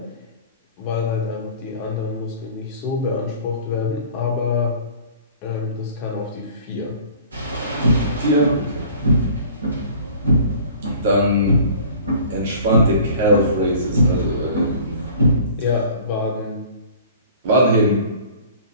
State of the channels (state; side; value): inverted; both; correlation -0.47